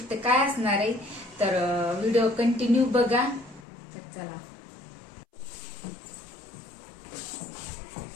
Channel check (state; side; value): drops out; right; at 3.7 s